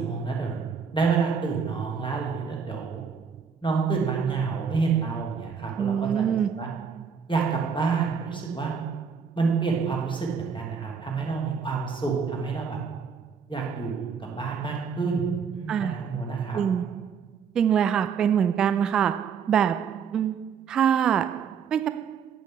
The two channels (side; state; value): left; quieter; 6.5 dB